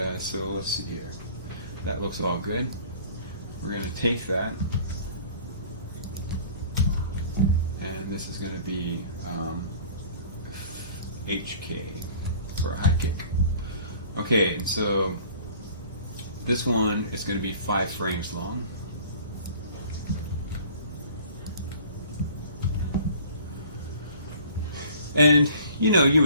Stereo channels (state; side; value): inverted; both; correlation -0.48